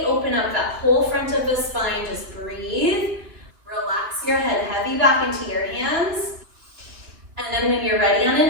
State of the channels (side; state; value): left; late; 2.7 ms